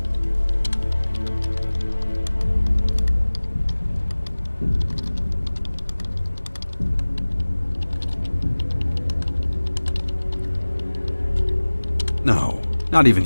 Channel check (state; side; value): inverted; both; correlation -1.00